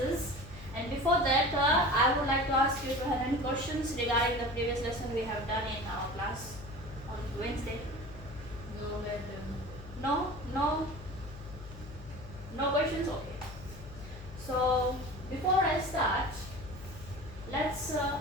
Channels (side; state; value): left; noise; hum, 14 dB below the sound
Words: And before that, I would like to ask you to have any questions regarding the previous lesson we have done in our class on Wednesday. No, madam. No questions. Okay. So before I start